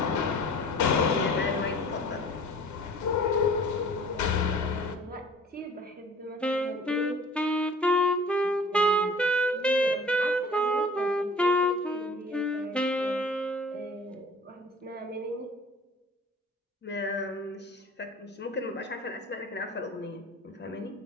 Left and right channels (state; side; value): normal; both; correlation 0.47